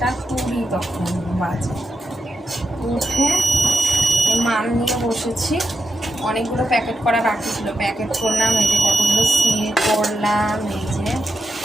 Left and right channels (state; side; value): normal; both; correlation 0.87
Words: তখন বাজে। উঠে মাল নিয়ে বসেছি। অনেকগুলো প্যাকেট করা বাকি ছিল, প্যাকেট করলাম। এই যে কতগুলো সিল করলাম, এই যে।